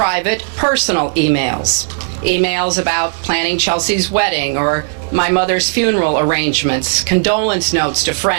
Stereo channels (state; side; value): silent; left; digital silence